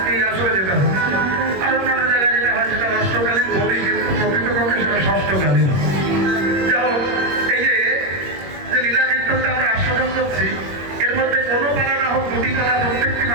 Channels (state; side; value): late; left; 21 ms